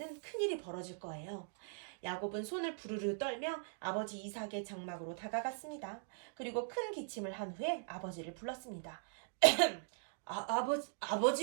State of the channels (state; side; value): silent; left; digital silence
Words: 큰일이 벌어질 거예요. 야곱은 손을 부르르 떨며 아버지 이삭의 장막으로 다가갔습니다. 그리고 큰 기침을 한 후에 아버지를 불렀습니다.